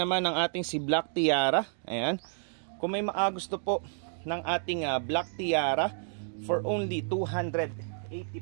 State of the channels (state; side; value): silent; left; 58 dB below the other